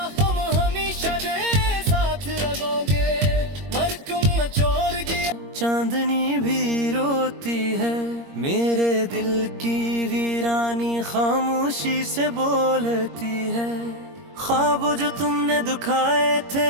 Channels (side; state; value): left; late; 21 ms